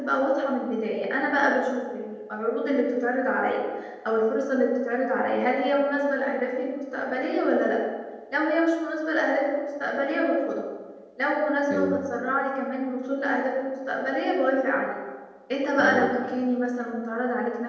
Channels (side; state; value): both; identical; correlation 1.00